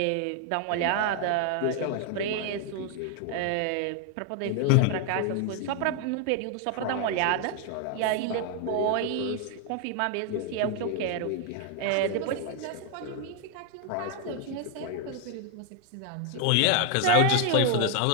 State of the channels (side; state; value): both; different; correlation 0.00